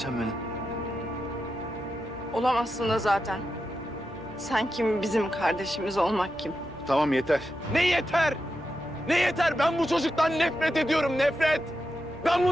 benim. Olamazsın da zaten. Sen kim, bizim kardeşimiz olmak kim? Tamam yeter. Ne yeter? Ne yeter? Ben bu çocuktan nefret ediyorum, nefret. Ben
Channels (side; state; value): both; normal; correlation 0.88